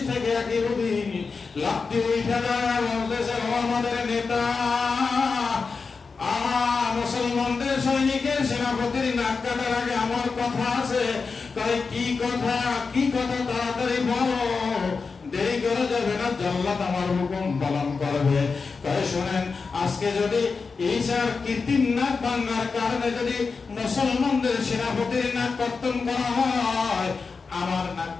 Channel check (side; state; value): right; quieter; 4.7 dB